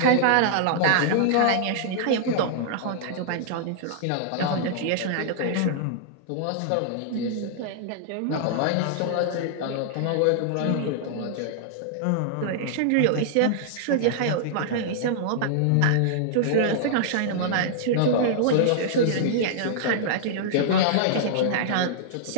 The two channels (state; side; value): different; both; correlation -0.01